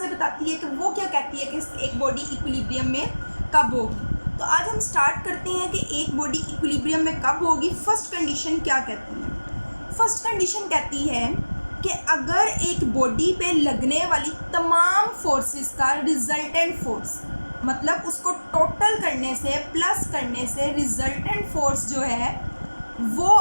बताती है कि वो क्या कहती है कि एक बॉडी इक्विलिब्रियम में कब होगी। तो आज हम स्टार्ट करते हैं कि एक बॉडी इक्विलिब्रियम में कब होगी। फर्स्ट कंडीशन क्या कहती है? फर्स्ट कंडीशन कहती है कि अगर एक बॉडी पे लगने वाली तमाम फोर्सेस का रिजल्टेंट फोर्स, मतलब उसको टोटल करने से प्लस करने से रिजल्टेंट फोर्स जो है वो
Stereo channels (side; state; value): both; inverted; correlation -1.00